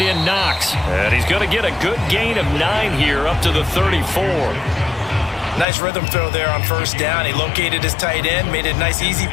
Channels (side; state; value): right; drops out; at 5.7 s